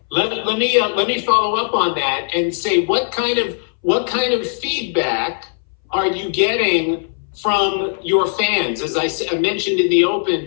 Let me follow up on that and say what kind of feedback are you getting from your fans? As I mentioned in the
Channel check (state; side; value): silent; right; 63 dB below the other